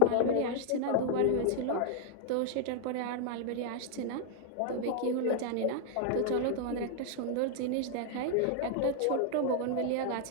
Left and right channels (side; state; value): both; different; correlation 0.00